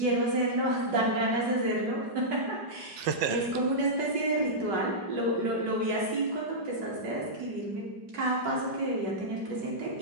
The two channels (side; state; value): left; late; 5.4 ms